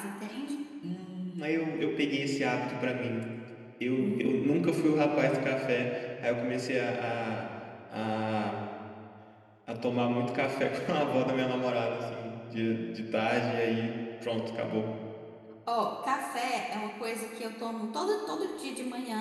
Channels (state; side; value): identical; both; correlation 1.00